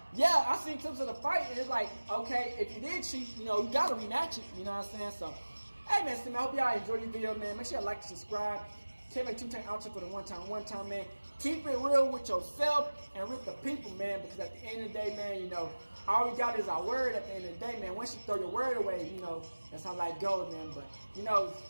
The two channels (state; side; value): inverted; both; correlation -1.00